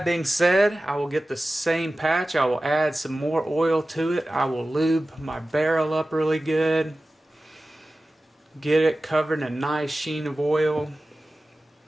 being said, I will get the same patch. I will add some more oil to it. I will lube my barrel up really good, get it covered in a nice sheen of oil.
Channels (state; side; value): normal; both; correlation 0.96